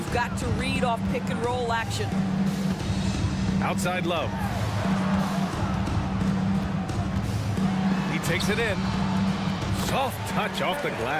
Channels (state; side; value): identical; both; correlation 1.00